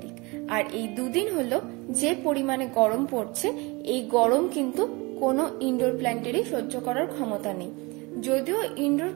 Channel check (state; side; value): quieter; left; 25.8 dB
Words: আর এই দুদিন হলো যে পরিমাণে গরম পড়ছে, এই গরম কিন্তু কোনো ইনডোর প্ল্যান্টেরই সহ্য করার ক্ষমতা নেই। যদিও ইনডোর